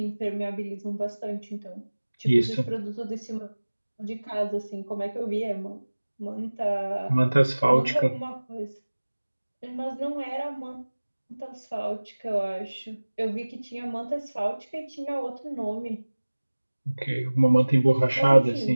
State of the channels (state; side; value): inverted; both; correlation -1.00